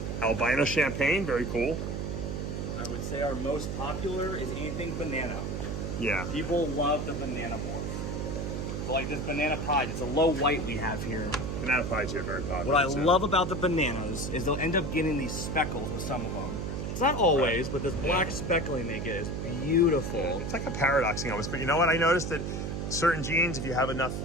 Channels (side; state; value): right; noise; hum, 3 dB below the sound